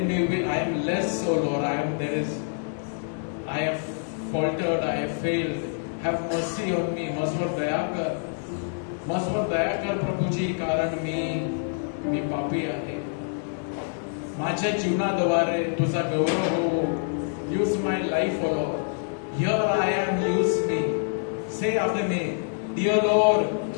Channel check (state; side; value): silent; right; 61 dB below the other